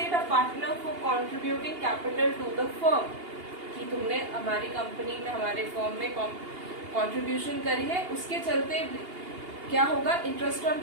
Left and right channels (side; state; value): left; late; 2.8 ms